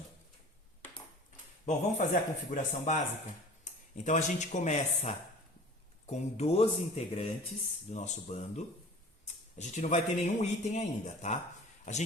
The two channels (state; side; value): normal; both; correlation 0.43